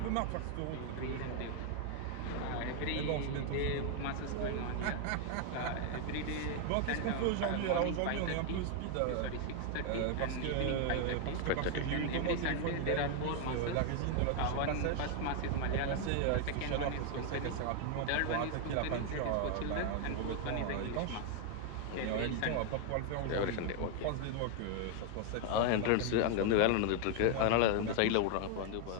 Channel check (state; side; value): different; both; correlation 0.01